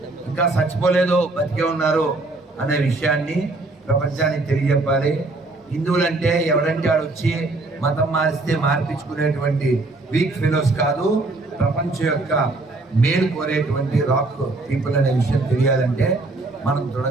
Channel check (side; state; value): left; quieter; 3.1 dB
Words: ఇంకా చచ్చిపోలేదు, బతికే ఉన్నారు అనే విషయాన్ని ప్రపంచానికి తెలియజెప్పాలి. హిందువులంటే ఎవరంటే వాడు వచ్చి మతం మారిస్తే మార్పించుకునేటువంటి వీక్ ఫెలోస్ కాదు, ప్రపంచం యొక్క మేలు కోరేటువంటి రాక్ పీపుల్ అనే విషయం తెలియాలంటే మనం